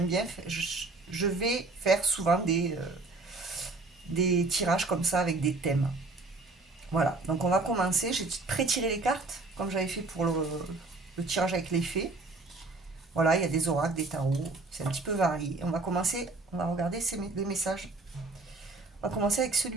bien, je vais faire souvent des tirages comme ça avec des thèmes. Voilà, donc on va commencer. J'ai pré-tiré les cartes, comme j'avais fait pour le tirage avec les fées. Voilà, il y a des oracles, des tarots, c'est un petit peu varié. On va commencer, on va regarder les messages. On va commencer avec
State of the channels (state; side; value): quieter; left; 3.4 dB